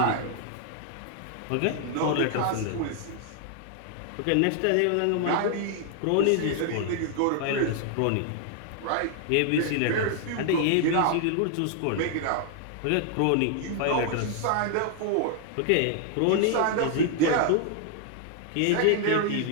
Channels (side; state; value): both; different; correlation 0.00